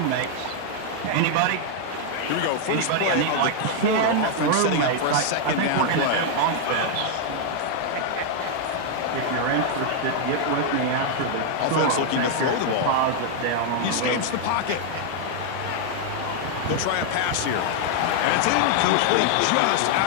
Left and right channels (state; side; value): different; both; correlation 0.00